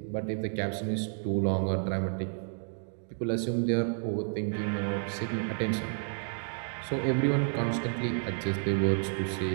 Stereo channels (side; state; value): left; silent; 57 dB below the other